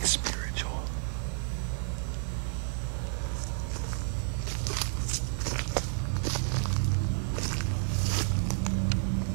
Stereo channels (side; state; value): left; silent; 56 dB below the other